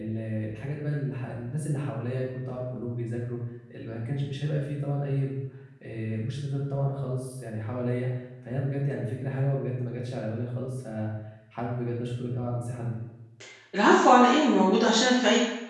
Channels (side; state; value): both; identical; correlation 1.00